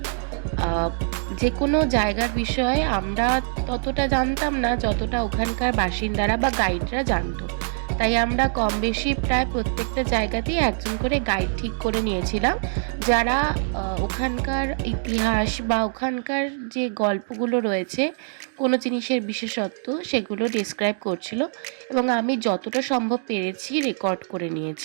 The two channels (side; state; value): left; silent; digital silence